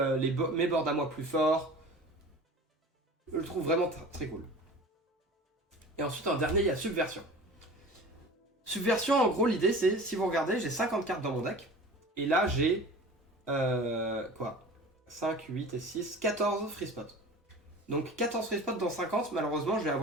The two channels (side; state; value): both; normal; correlation 0.39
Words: mes boards à moi plus forts. Je le trouve vraiment très cool. Et ensuite en dernier il y a Subversion. Subversion, en gros, l'idée c'est, si vous regardez, j'ai 50 cartes dans mon deck. Et là, j'ai... quoi 5, 8 et 6, 14 free spots. Donc 14 free spots dans 50, malheureusement, je vais